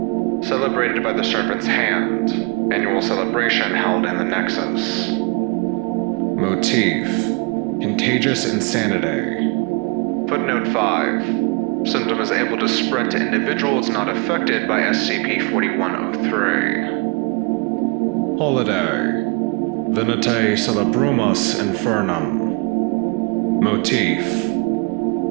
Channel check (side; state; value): left; quieter; 30.5 dB